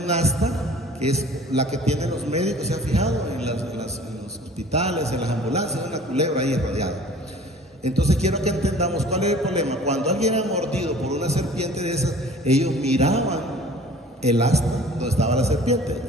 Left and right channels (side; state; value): both; normal; correlation 0.47